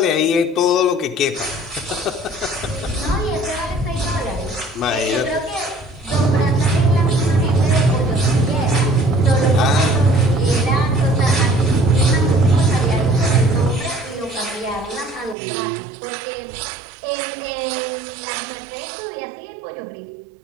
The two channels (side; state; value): left; drops out; at 15.4 s